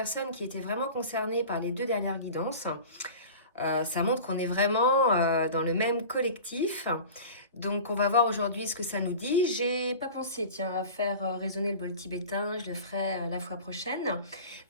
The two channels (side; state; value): both; inverted; correlation -0.37